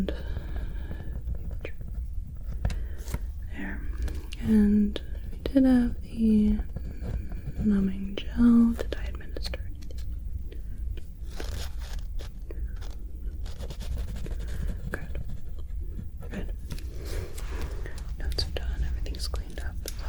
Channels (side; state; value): both; identical; correlation 1.00